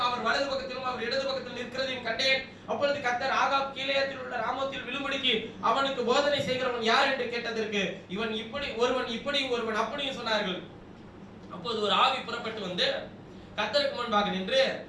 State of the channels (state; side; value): identical; both; correlation 1.00